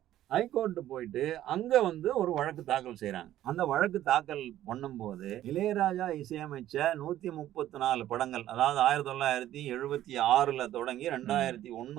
ஹைகோர்ட்டு போயிட்டு அங்க வந்து ஒரு வழக்கு தாக்கல் செய்றாங்க. அந்த வழக்கு தாக்கல் பண்ணும்போது இளையராஜா இசையமைச்ச 134 படங்கள், அதாவது 1976ல தொடங்கி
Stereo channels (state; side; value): quieter; left; 13.0 dB